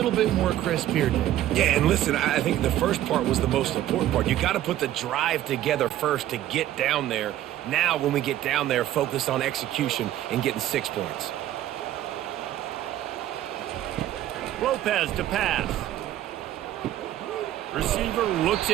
bit more crisp here, Dave. Yeah, and listen, I think the first part was the most important part. You got to put the drive together first to get down there. Now, when we get down there, focus on execution and getting 6 points. Lopez to pass. Receiver looks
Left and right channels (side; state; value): left; quieter; 13.0 dB